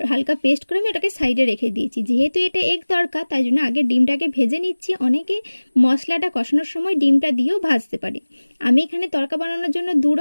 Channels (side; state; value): both; inverted; correlation -1.00